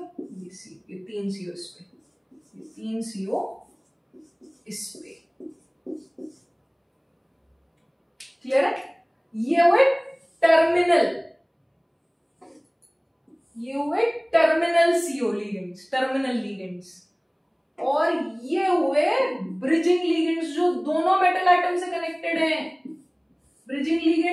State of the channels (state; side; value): identical; both; correlation 1.00